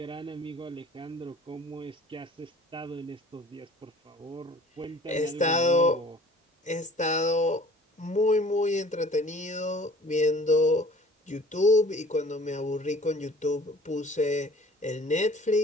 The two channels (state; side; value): normal; both; correlation 0.50